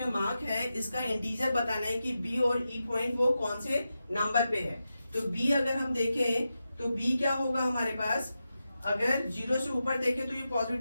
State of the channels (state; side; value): inverted; both; correlation -0.90